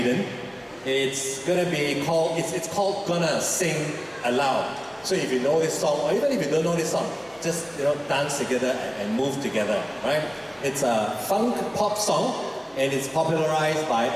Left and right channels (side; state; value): both; identical; correlation 1.00